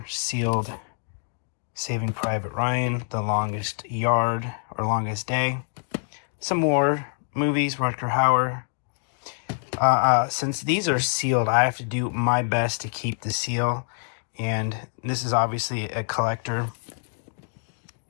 sealed Saving Private Ryan, The Longest Yard or Longest Day. Some more movies, Rutger Hauer. Since these are sealed, I have to do my best to keep the seal. And this is obviously a collector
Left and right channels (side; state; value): right; silent; 61 dB below the other